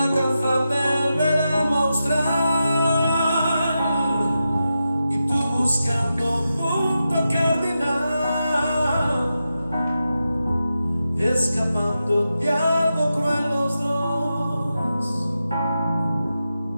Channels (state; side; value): inverted; both; correlation -0.89